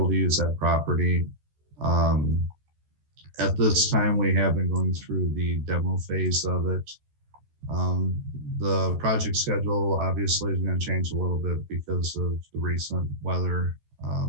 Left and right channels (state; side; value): late; left; 14 ms